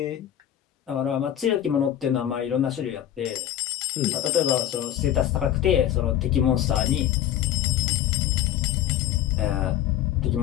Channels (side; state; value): right; quieter; 11.4 dB